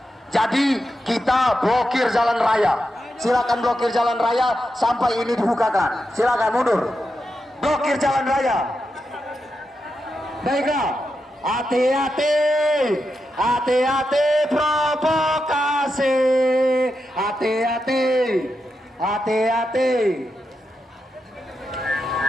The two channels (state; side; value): normal; both; correlation 0.87